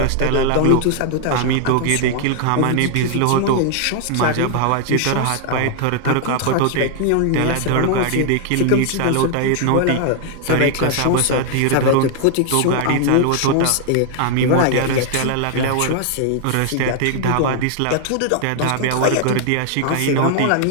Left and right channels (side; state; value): both; different; correlation 0.00